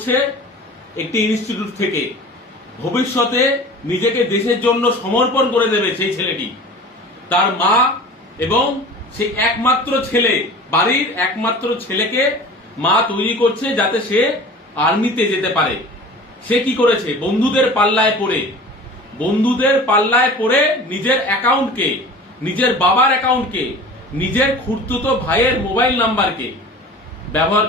একটি ইনস্টিটিউট থেকে। ভবিষ্যতে নিজেকে দেশের জন্য সমর্পণ করে দেবে সেই ছেলেটি। তার মা এবং সেই একমাত্র ছেলে, বাড়ির একমাত্র ছেলেকে মা তৈরি করছে যাতে সে আর্মিতে যেতে পারে। সে কি করেছে? বন্ধুদের পাল্লায় পড়ে নিজের অ্যাকাউন্টকে, নিজের বাবার অ্যাকাউন্টকে, নিজের খুড়তুতো ভাইয়ের মোবাইল নাম্বারকে ব্যবহার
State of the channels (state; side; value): normal; both; correlation 0.40